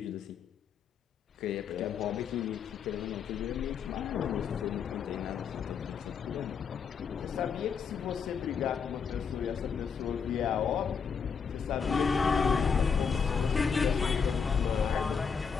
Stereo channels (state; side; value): quieter; right; 6.3 dB